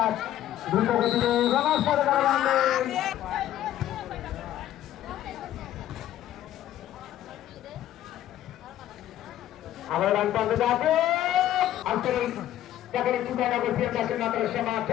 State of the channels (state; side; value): quieter; right; 12.5 dB